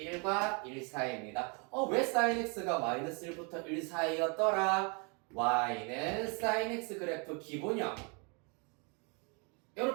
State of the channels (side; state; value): left; quieter; 33.7 dB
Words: 1 사이입니다. 왜 sin x가 마이너스 1부터 1 사이였더라? y는 sin x 그래프 기본형